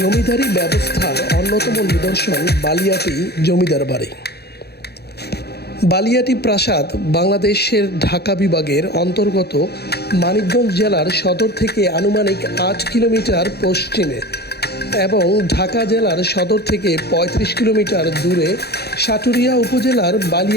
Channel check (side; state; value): right; late; 0.47 ms